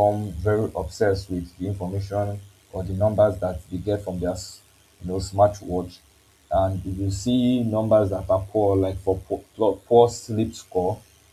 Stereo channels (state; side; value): identical; both; correlation 1.00